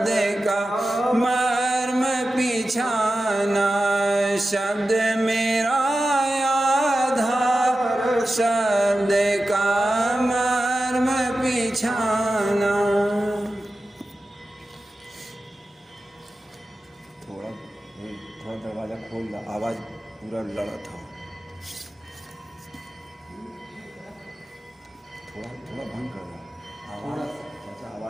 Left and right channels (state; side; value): normal; both; correlation 0.93